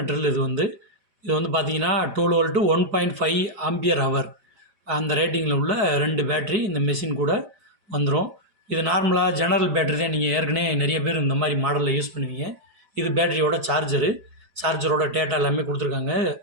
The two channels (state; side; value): late; left; 5.0 ms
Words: ட்ரில் இது வந்து பார்த்தீங்கன்னா 12 வோல்ட்டு 1.5 ஆம்பியர் ஹவர் அந்த ரேட்டிங்கில் உள்ள 2 பேட்ரி இந்த மெஷின் கூட வந்துடும். இது நார்மலாக ஜெனரல் பேட்ரி தான். நீங்கள் ஏற்கனவே நிறைய பேர் இந்த மாதிரி மாடலில் யூஸ் பண்ணுவீங்க. இது பேட்டரியோட சார்ஜரோட டேட்டா எல்லாமே கொடுத்துருக்காங்க.